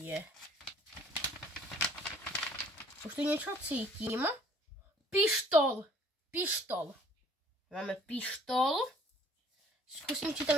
Už tu niečo cítim. Pištol. Pištol. Máme pištol. Skúsim, či tam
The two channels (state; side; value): normal; both; correlation 0.57